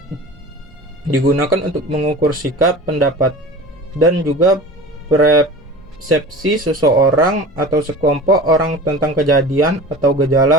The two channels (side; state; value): both; normal; correlation 0.37